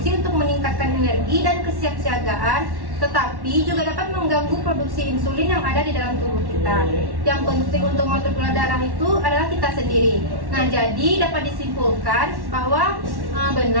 untuk meningkatkan energi dan kesiapsiagaan, tetapi juga dapat mengganggu produksi insulin yang ada di dalam tubuh kita. Yang penting untuk mengatur gula darah itu adalah kita sendiri. Nah, jadi dapat disimpulkan bahwa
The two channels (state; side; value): late; left; 1.1 ms